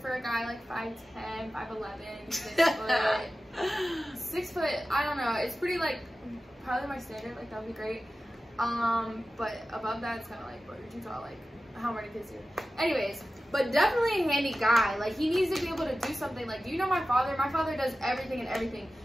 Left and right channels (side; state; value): both; normal; correlation 0.95